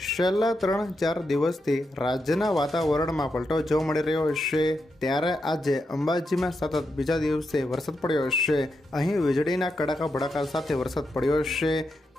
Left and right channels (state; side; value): normal; both; correlation 0.85